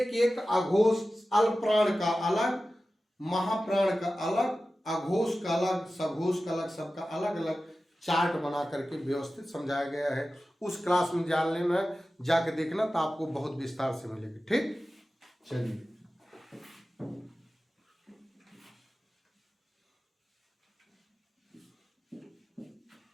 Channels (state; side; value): normal; both; correlation 0.95